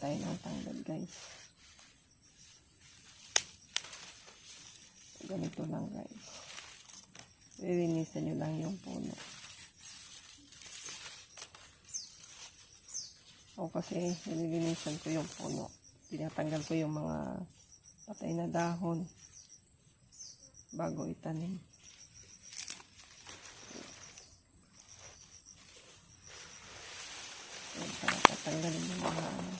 ng tanglad, guys. Ganito lang, guys. Lilinisan nyo lang yung puno. Ako kasi nililinisan ko yung puno. Tinatanggal ko yung mga patay na dahon bago itanim. Para tatanggalin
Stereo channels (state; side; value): identical; both; correlation 1.00